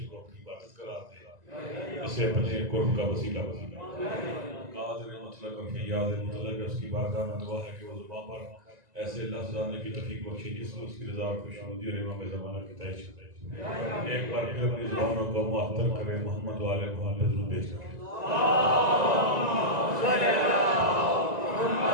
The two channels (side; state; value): left; late; 1.9 ms